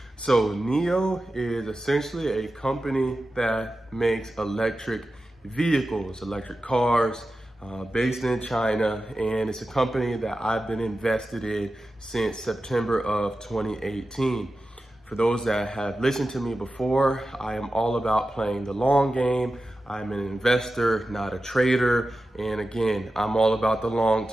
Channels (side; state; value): both; normal; correlation 0.93